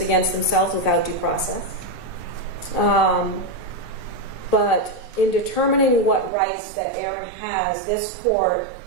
against themselves without due process. But in determining what rights that Aaron has, this court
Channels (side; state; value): left; drops out; at 6.3 s